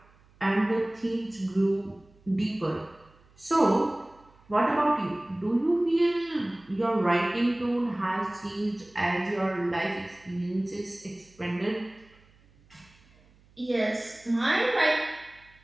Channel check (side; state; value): right; noise; hum, 29 dB below the sound